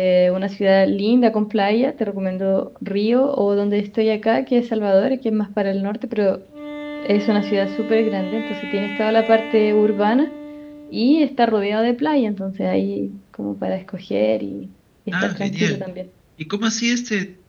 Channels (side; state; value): both; identical; correlation 1.00